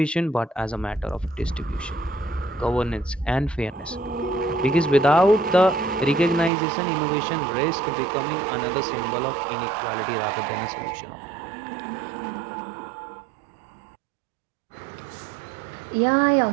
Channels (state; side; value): drops out; left; at 6.5 s